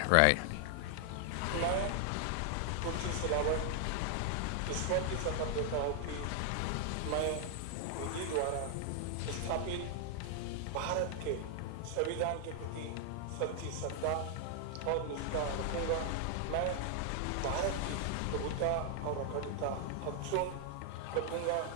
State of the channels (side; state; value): both; different; correlation 0.00